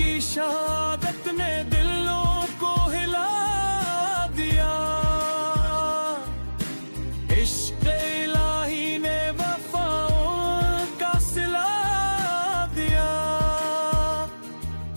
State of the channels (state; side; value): inverted; both; correlation -1.00